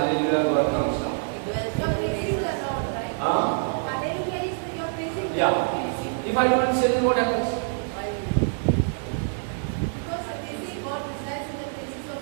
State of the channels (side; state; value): left; silent; digital silence